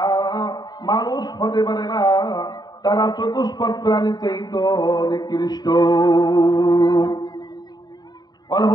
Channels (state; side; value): late; right; 0.20 ms